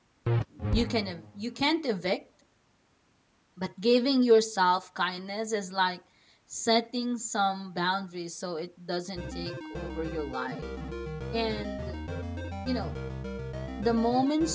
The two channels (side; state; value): both; identical; correlation 1.00